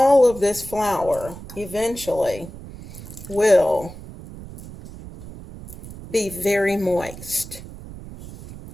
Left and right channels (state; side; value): noise; right; rumble, 14 dB below the sound